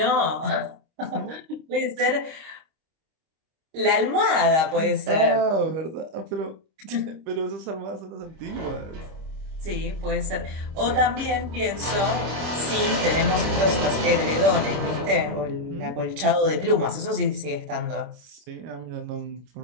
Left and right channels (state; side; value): late; left; 25 ms